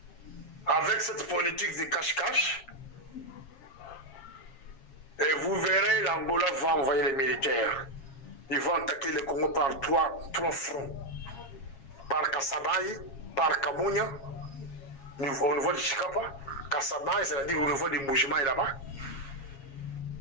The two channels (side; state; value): right; late; 7.3 ms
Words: Avec cette politique de cache-cache, et vous verrez, l'Angola va envoyer les militaires. Ils vont attaquer le Congo par trois fronts. Par Kassabaye, par Kamunya, au niveau de Chikapa. Kassabaye, c'est-à-dire au niveau des Mbujimaï là-bas.